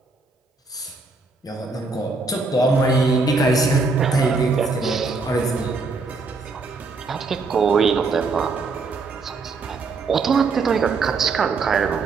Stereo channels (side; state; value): left; quieter; 4.0 dB